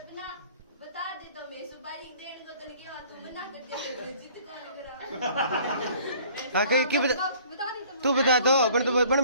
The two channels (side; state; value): both; inverted; correlation -0.54